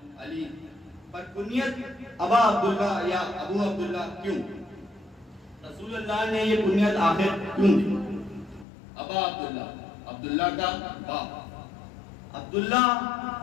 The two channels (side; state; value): right; drops out; at 8.7 s